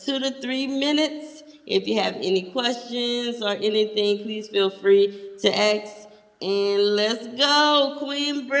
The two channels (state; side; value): identical; both; correlation 1.00